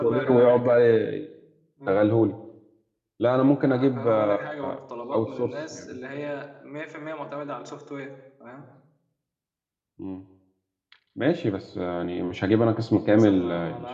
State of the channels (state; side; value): identical; both; correlation 1.00